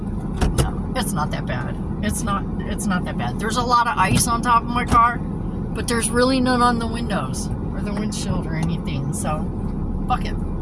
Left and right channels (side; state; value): both; identical; correlation 1.00